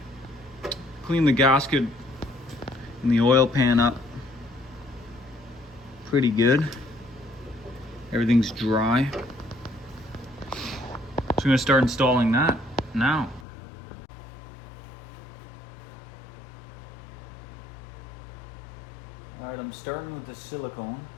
Clean the gasket and the oil pan up pretty good. Everything's dry. So I'm gonna start installing that now. All right, I'm starting with the silicone.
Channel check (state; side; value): drops out; right; at 13.5 s